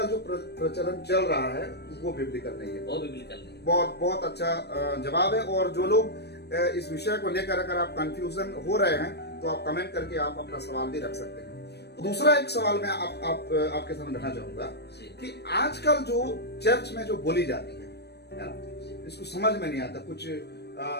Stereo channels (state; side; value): late; right; 0.48 ms